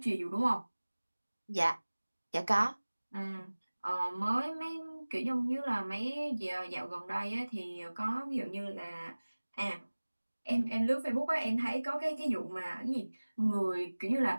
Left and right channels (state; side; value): inverted; both; correlation -1.00